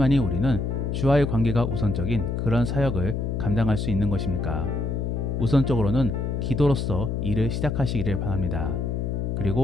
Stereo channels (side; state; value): left; noise; hum, 1 dB below the sound